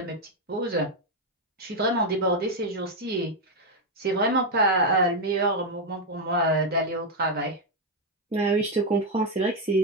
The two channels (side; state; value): both; normal; correlation 0.03